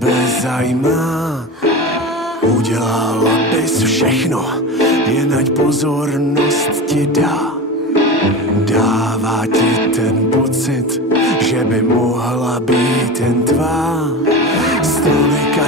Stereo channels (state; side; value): normal; both; correlation 0.27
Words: zajímá. Udělala bys všechno, jen ať pozornost ti dá. Dává ti ten pocit, že by mohla být jen tvá. Z tolika